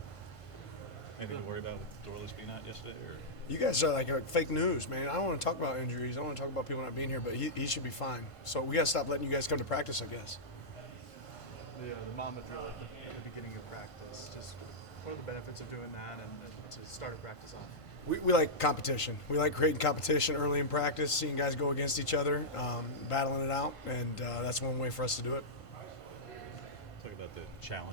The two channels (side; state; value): right; late; 1.5 ms